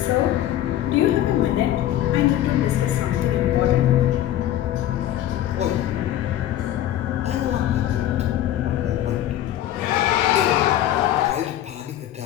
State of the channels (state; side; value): quieter; right; 12.5 dB